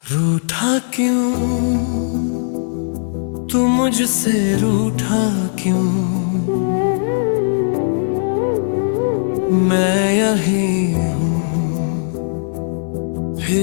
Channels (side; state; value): right; silent; 67 dB below the other